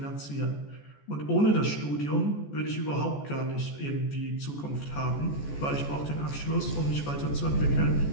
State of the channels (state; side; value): late; right; 14 ms